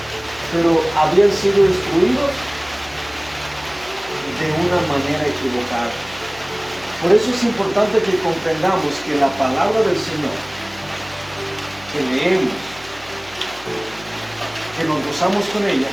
pero habían sido instruidos de una manera equivocada. Por eso es importante que comprendamos que la palabra del Señor que leemos, que nos gozamos con ella,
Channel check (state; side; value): noise; left; hum, 22 dB below the sound